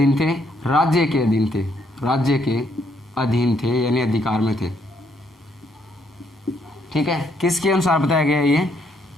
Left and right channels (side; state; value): both; normal; correlation 0.72